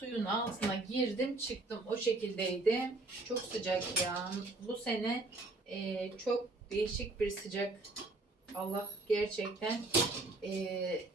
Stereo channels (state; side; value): quieter; left; 3.1 dB